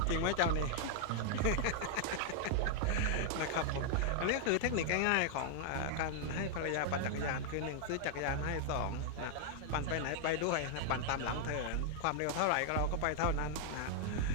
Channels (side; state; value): both; different; correlation 0.00